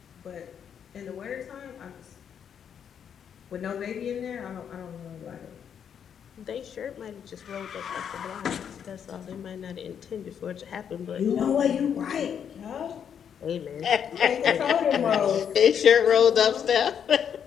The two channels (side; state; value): right; quieter; 8.1 dB